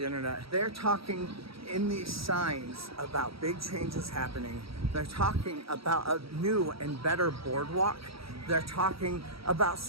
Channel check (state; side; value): late; left; 0.76 ms